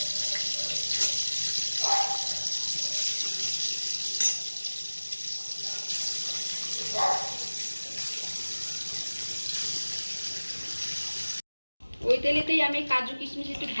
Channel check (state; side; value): inverted; both; correlation -1.00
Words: ওই তেলেতেই আমি কাজু কিশমিশ একটু